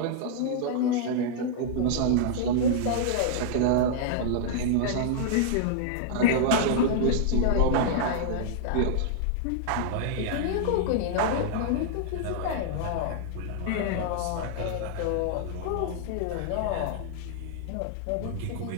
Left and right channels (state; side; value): different; both; correlation -0.01